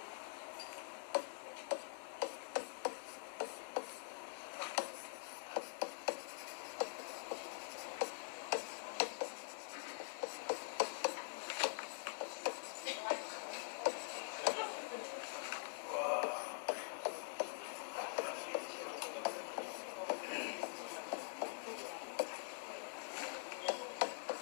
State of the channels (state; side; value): silent; right; digital silence